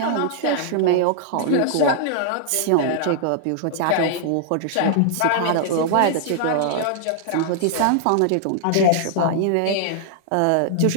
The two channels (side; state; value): both; different; correlation -0.01